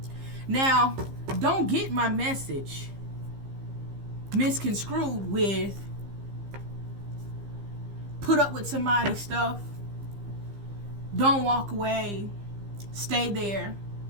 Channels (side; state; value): left; late; 15 ms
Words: Now, don't get my message misconstrued with put up with somebody's stuff, don't walk away, stay there.